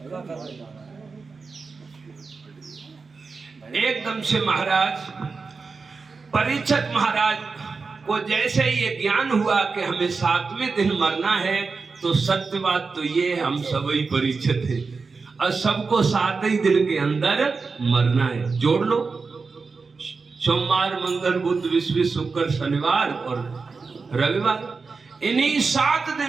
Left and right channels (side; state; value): left; quieter; 4.5 dB